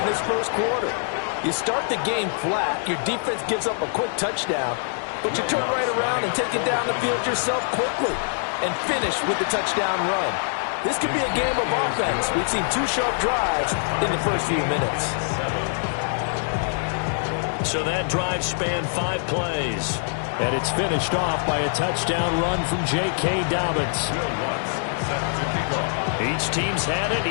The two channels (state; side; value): silent; right; digital silence